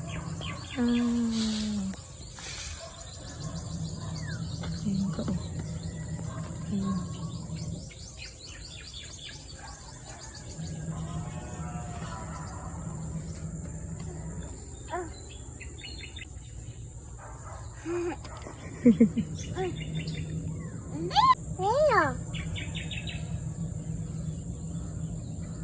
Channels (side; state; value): both; identical; correlation 1.00